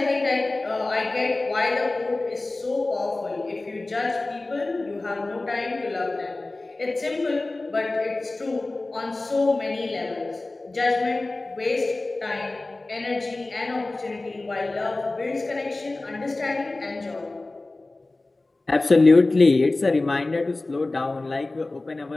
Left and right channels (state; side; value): quieter; right; 3.1 dB